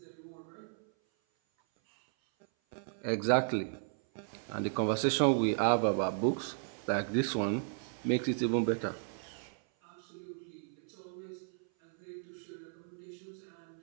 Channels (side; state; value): left; silent; 55 dB below the other